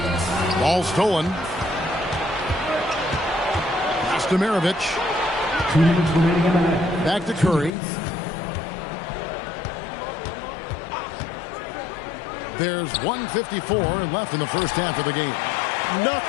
Ball stolen. Pass to Maravich. Back to Curry. There's 1:54 left in the first half of the game.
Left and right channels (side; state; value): right; drops out; at 7.7 s